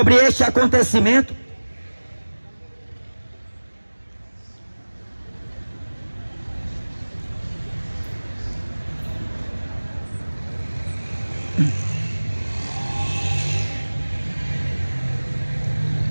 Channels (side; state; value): both; inverted; correlation -1.00